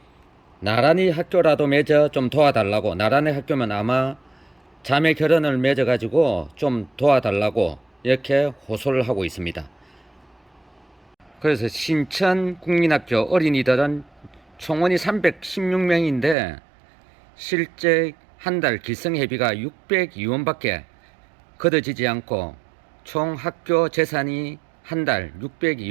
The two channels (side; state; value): left; drops out; at 16.4 s